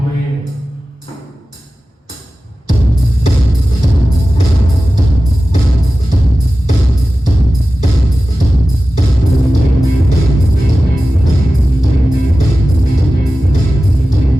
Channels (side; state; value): both; normal; correlation 0.95